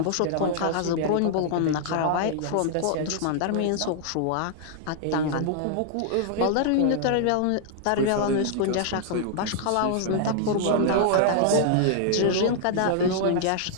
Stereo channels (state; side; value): different; both; correlation -0.01